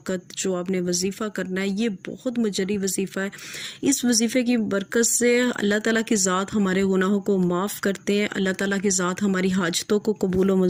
जो आपने वजीफ़ा करना है, ये बहुत मुजर्री वजीफ़ा है। इस वजीफ़े की बरकत से अल्लाह ताला की ज़ात हमारे गुनाहों को माफ़ करते हैं, अल्लाह ताला की ज़ात हमारी हाजतों को कबूल व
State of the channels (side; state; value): both; identical; correlation 1.00